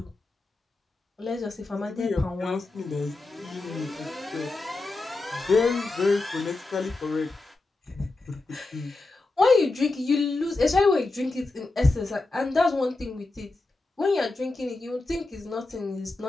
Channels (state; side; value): quieter; right; 3.2 dB